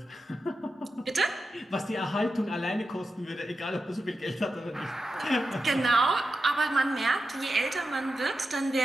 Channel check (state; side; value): normal; both; correlation 0.90